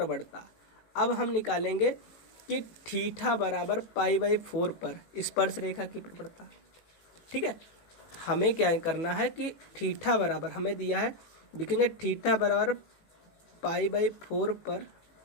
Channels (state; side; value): late; right; 18 ms